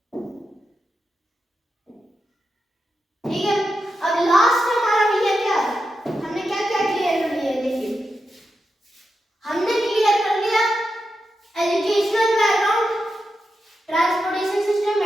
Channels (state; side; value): normal; both; correlation 0.88